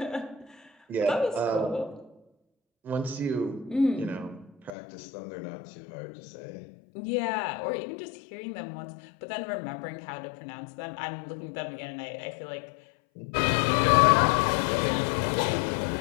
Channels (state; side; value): drops out; right; at 4.8 s